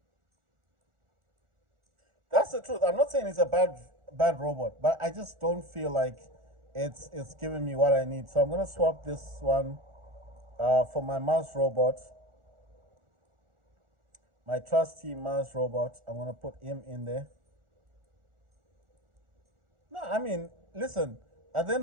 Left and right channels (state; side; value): late; left; 1.4 ms